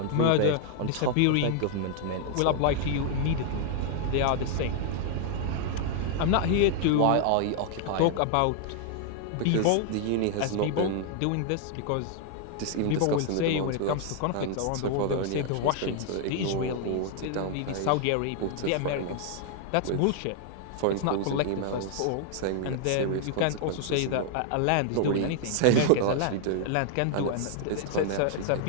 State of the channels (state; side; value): different; both; correlation 0.00